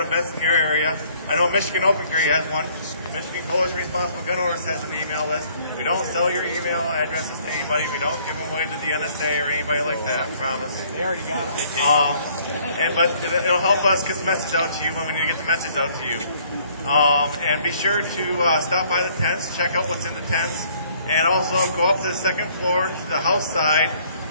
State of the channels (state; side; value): inverted; both; correlation -0.61